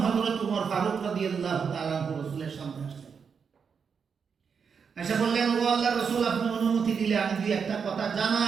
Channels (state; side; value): quieter; left; 6.3 dB